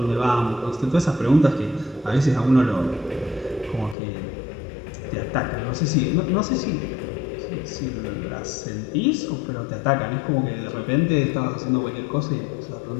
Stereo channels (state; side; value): drops out; right; at 4.0 s